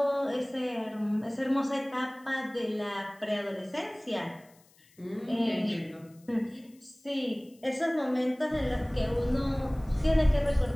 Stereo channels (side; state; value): left; noise; hiss, 30 dB below the sound